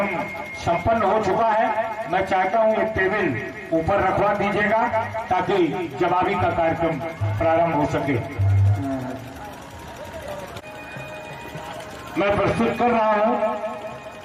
संपन्न हो चुका है, मैं चाहता हूं एक टेबल ऊपर रखवा दीजिएगा ताकि जवाबी का कार्यक्रम प्रारंभ हो सके। मैं प्रस्तुत कर रहा हूं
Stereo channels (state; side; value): identical; both; correlation 1.00